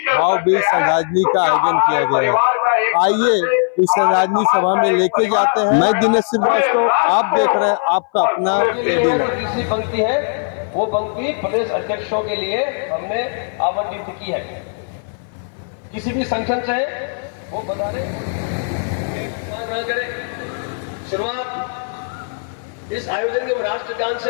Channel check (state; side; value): silent; right; 59 dB below the other